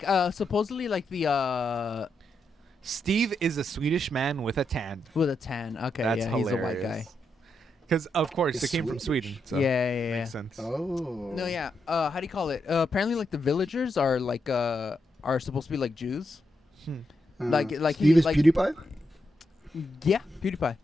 supposedly like the Steve is a Swedish man with a tan. with a tan. Okay, That's yeah, hilarious. he's a white guy. Because of course He's they came from Swedish. Sweden. So Yeah. makes sense. Oh. No, yeah. How do you call it? Apparently, like the villagers are like are supposed to be like Jews. like Steve is like- PewDiePie. Yeah, PewDiePie.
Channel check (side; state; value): both; normal; correlation 0.83